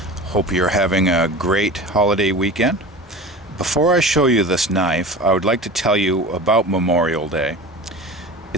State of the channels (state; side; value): normal; both; correlation 0.34